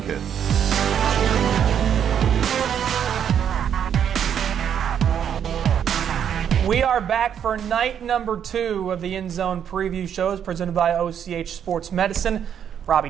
We are back for night number 2 of the End Zone Preview Shows presented by OCH Sports Medicine. Robbie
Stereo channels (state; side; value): quieter; left; 8.7 dB